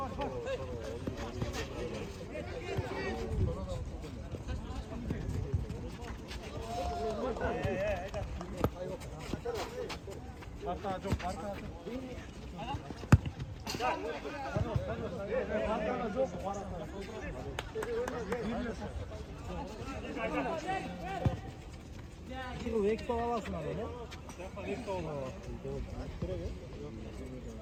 지금 왜 이렇게 와봤어 나는? 약간 이렇게 와봤어. 그러게.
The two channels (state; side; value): identical; both; correlation 1.00